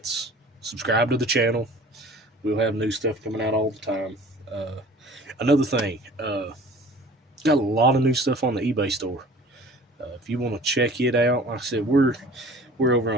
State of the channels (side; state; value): both; normal; correlation 0.46